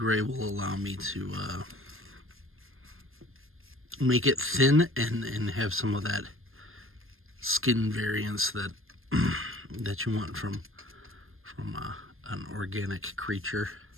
will allow me to make it thin and have some of that skin variance that that you want from an organic creature.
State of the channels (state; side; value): late; left; 0.60 ms